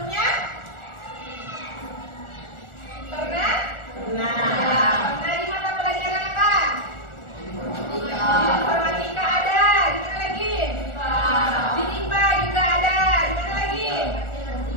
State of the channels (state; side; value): late; right; 1.4 ms